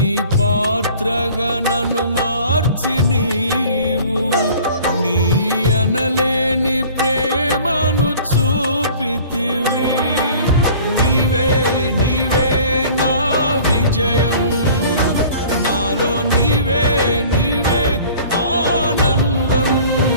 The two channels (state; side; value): inverted; both; correlation -0.48